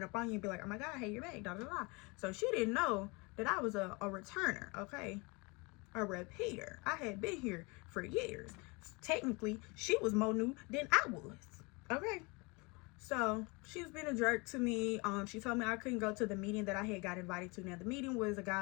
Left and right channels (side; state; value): right; quieter; 27.9 dB